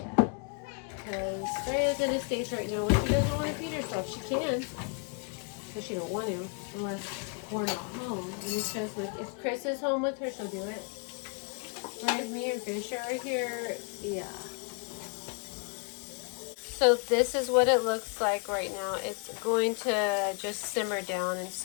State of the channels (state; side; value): quieter; right; 37.8 dB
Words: Because Freya's in a stage right now where she doesn't want to feed herself. She can, but she don't want to unless we're not home. And it's just like, if Chris is home with her, she'll do it. Whereas me and Fisher are here, yeah. So this is what it looks like right now. It's going to just simmer down and